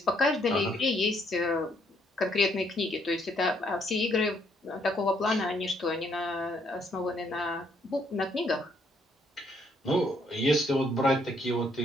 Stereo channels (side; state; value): both; normal; correlation 0.70